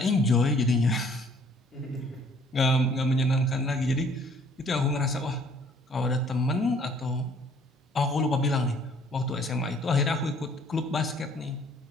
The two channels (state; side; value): normal; both; correlation 0.59